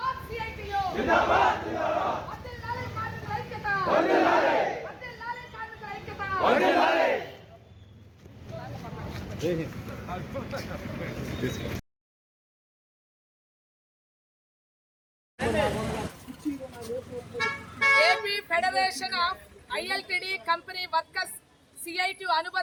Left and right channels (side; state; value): both; identical; correlation 1.00